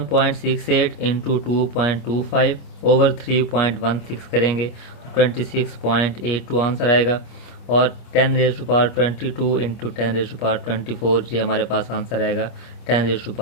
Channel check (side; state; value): right; late; 26 ms